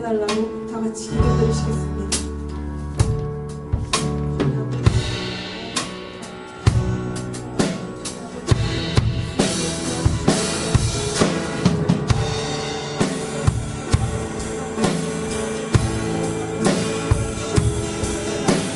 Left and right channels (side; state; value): both; identical; correlation 1.00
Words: 다 같이 기도드리시겠습니다.